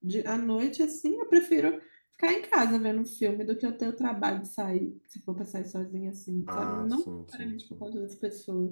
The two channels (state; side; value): inverted; both; correlation -1.00